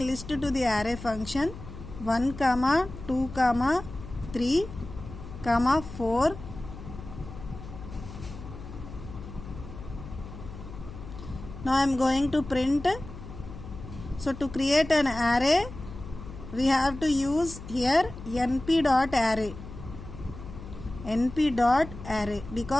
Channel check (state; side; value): noise; left; hum, 13 dB below the sound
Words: list to the array function 1, 2, 3, 4. Now I am going to print. So to create an array, we have to use here np.array. np.array